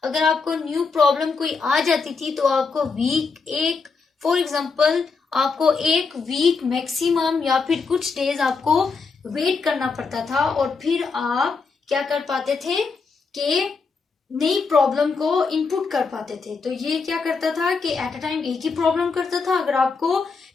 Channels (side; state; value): right; quieter; 4.8 dB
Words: अगर आपको न्यू प्रॉब्लम कोई आ जाती थी तो आपको वीक, एक फॉर एग्जांपल आपको एक वीक मैक्सिमम या फिर कुछ डेज आपको वेट करना पड़ता था और फिर आप क्या कर पाते थे कि नई प्रॉब्लम को इनपुट कर पाते थे। तो ये क्या करता था कि एट अ टाइम एक ही प्रॉब्लम करता था। अगर आपको